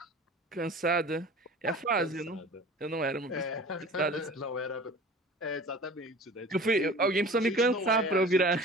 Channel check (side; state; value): both; normal; correlation 0.41